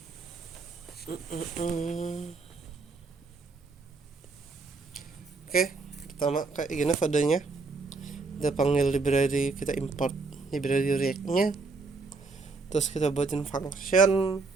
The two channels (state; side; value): quieter; left; 4.0 dB